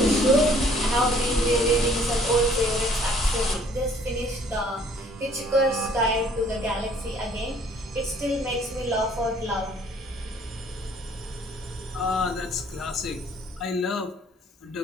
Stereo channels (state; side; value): normal; both; correlation 0.59